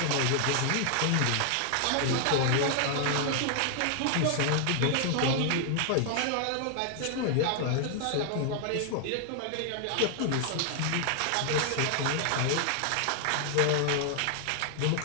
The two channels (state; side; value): different; both; correlation 0.00